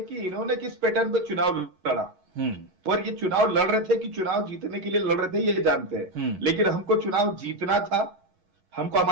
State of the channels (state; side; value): late; left; 11 ms